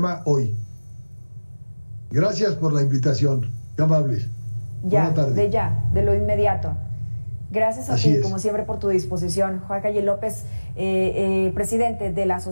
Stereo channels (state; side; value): inverted; both; correlation -1.00